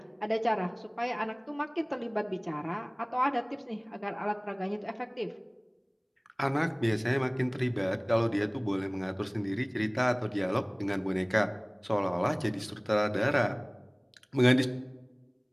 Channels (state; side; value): identical; both; correlation 1.00